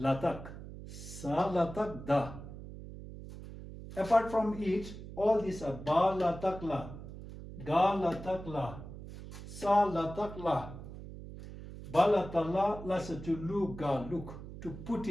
Salatak Da. Apart from it, all these are Ba Latak La, Ga Latak La, Sa Latak La. Balatala lasa to lu ga look, to put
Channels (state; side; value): noise; right; hum, 12 dB below the sound